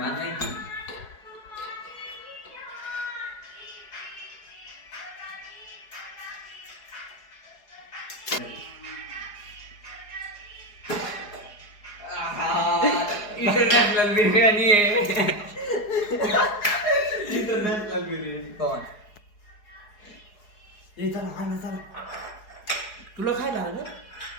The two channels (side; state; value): right; late; 4.8 ms